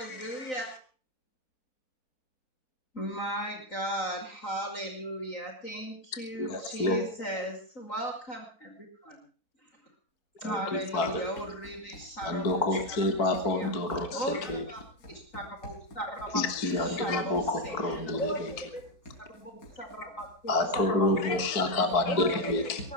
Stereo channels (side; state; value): right; late; 4.5 ms